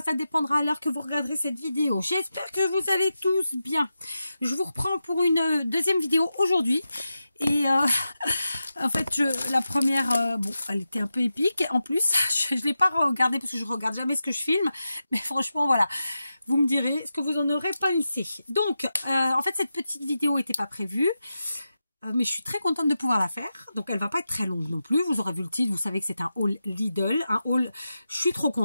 ça dépendra à l'heure que vous regarderez cette vidéo. J'espère que vous allez tous bien. Je vous reprends pour une deuxième vidéo aujourd'hui. Et en fait, la première, bon, elle était un peu épique. En plus, je ne l'ai pas regardée parce que je regarde jamais ce que je filme. Mais franchement, voilà. Vous me direz, est-ce que vous en aurez pensé? Donc, en fait, cette petite vidéo n'était pas prévue. Mais je suis très contente de pouvoir la faire. Donc, elle va pas être très longue non plus. Vous aurez vu le titre, vous savez que c'est un haul Lidl. Un haul, je suis trop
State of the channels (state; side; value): inverted; both; correlation -0.90